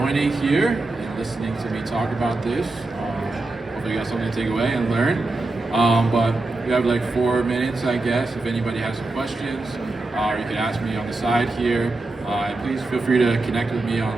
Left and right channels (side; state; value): left; quieter; 3.1 dB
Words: here and listening to me talk about this. Hopefully you got something to take away and learn. But we have like 4 minutes, I guess, if anybody has some questions, or you can ask me on the side here. And please feel free to connect with me